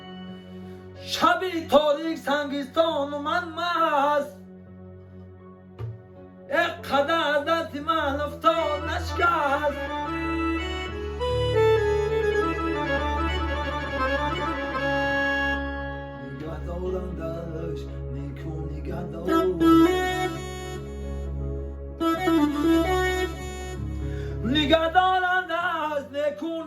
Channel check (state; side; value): identical; both; correlation 1.00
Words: شبی تاریک سنگستان و من مست، یک قدر دست من افتاد نشکست. داشت نیکو نگه داشت، نگه دارندش نیکو